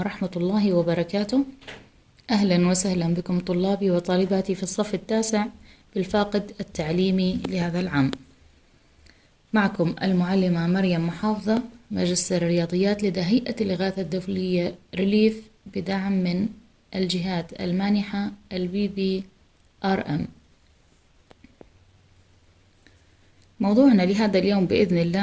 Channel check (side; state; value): both; identical; correlation 1.00